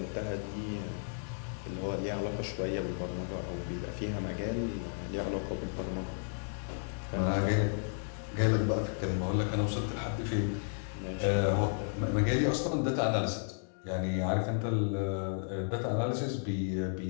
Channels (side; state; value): right; silent; 56 dB below the other